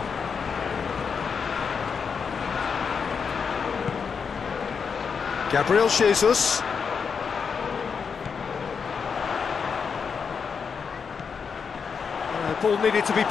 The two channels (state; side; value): quieter; right; 6.0 dB